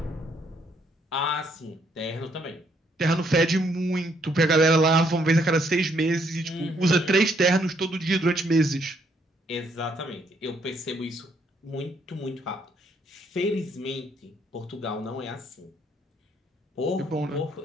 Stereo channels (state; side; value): normal; both; correlation 0.70